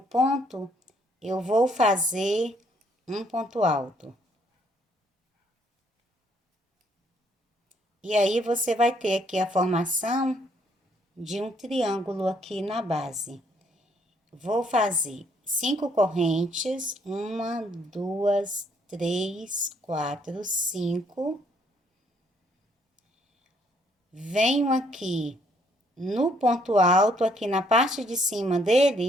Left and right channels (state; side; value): normal; both; correlation 0.67